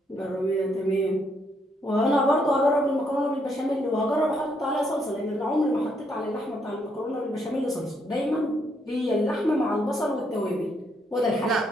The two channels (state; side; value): normal; both; correlation 0.74